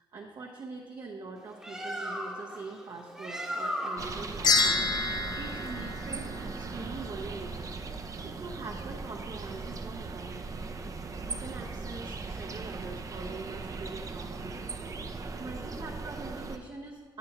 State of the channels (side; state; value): both; normal; correlation 0.42